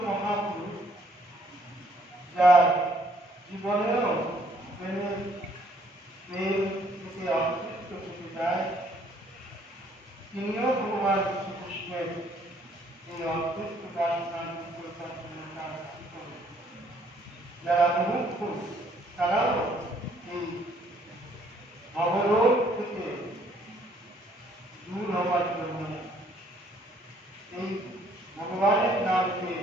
মহাপুরুষ যার জীবনেও প্রেমের থেকে অতৃপ্ত থেকে যায়, তিনিও ভগবান শ্রীকৃষ্ণের এই অতৃপ্ত বাসনা পরিকল্পনা করেন। যারা মুমুক্ষু তারাও এই ভবরোগ থেকে দূর হওয়ার জন্য এই ভগবানের নামকে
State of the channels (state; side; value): normal; both; correlation 0.64